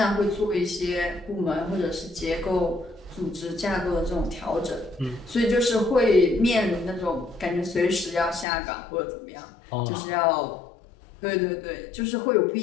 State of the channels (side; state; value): right; drops out; at 8.5 s